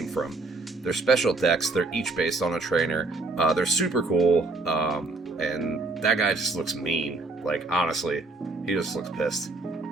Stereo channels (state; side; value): quieter; left; 3.3 dB